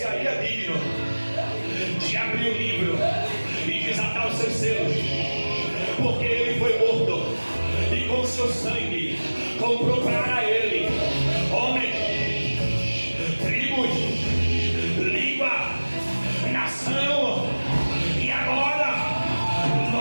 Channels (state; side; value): inverted; both; correlation -1.00